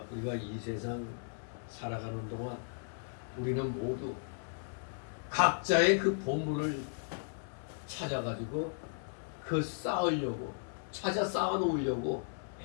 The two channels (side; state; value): right; silent; 54 dB below the other